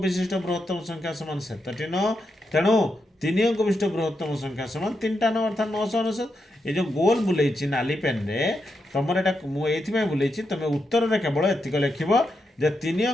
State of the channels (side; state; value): both; normal; correlation 0.85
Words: विशिष्ट बृहत्तम संख्या समान 7 न तेणु तीन अंक विशिष्ट बृहत्तम संख्या समान 3टा 9 अर्थात 999। ये जो गोल बुलेइछि नाली पेन रे तुमर एटा मु एथिमे बुलेइछि तुम उत्तर रे केवल एतिक लिखिबो जे 3